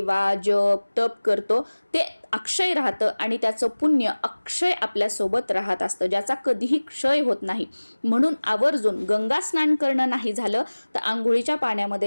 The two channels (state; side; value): inverted; both; correlation -1.00